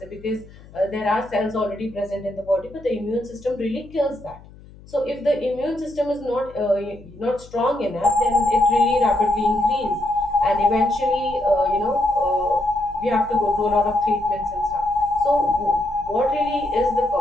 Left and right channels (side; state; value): left; noise; hum, 21 dB below the sound